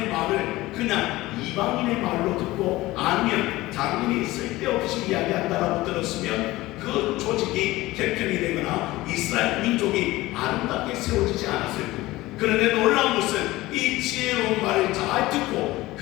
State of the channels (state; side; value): quieter; right; 18.5 dB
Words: 말을 그냥 이방인의 말로 듣고 아니면 장인이 쓸데없이 이야기한다라고 들었으면 그 조직이 개편이 되거나 이스라엘 민족이 아름답게 세워지지 않았을 거예요. 그런데 놀라운 것은 이 지혜로운 말을 잘 듣고